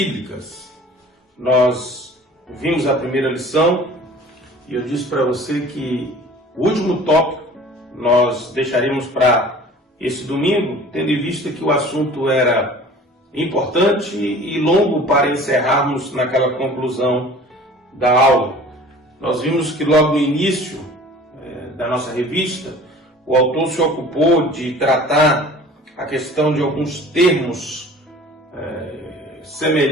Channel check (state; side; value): normal; both; correlation 0.45